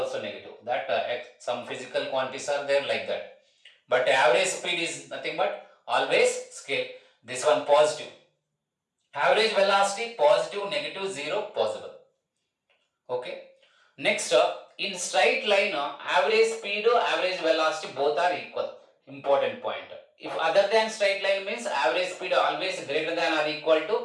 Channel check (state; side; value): identical; both; correlation 1.00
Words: negative. That some physical quantities are there like that. But average speed is nothing but always scale. This one positive. Average velocity positive, negative, zero possible. Okay. Next, in straight line, average speed, average velocity both are equal. Important point. If other than straight line means average speed always greater than or equal